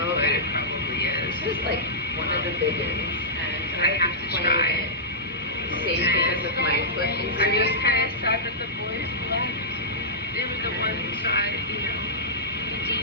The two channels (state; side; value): normal; both; correlation -0.15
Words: foot. It probably is. It's just like one of the big ones, and I have to try it. Safe because of my foot injury. I'm just kind of sad that the boys left. They were the ones that, you know, we